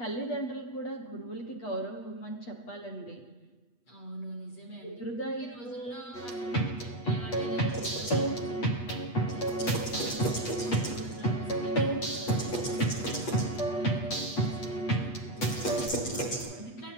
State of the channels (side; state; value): right; late; 8.3 ms